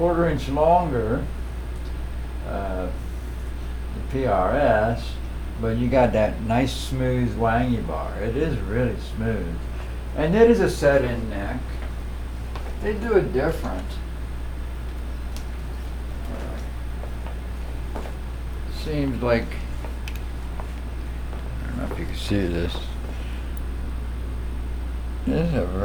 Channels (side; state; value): both; identical; correlation 1.00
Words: inch longer, the PRS, but you got that nice smooth wangy bar. It is really smooth. And it is a set-in neck. They do it different. Seems like, I don't know if you can see this. This is